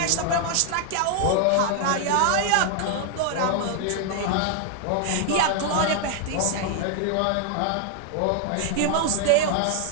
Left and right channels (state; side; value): different; both; correlation 0.00